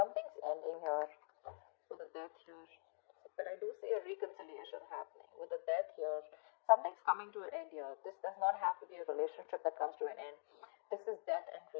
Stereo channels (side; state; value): right; silent; digital silence